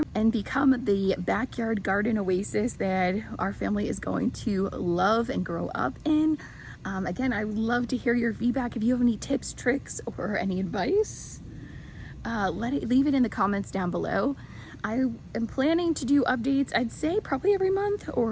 and become the backyard garden oasis that our family is going to love and grow up in. Again, I would love to hear your feedback. If you have any tips, tricks, or any advice, leave it in the comments down below. I am planning to do updates, I'd say probably every month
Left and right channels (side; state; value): both; identical; correlation 1.00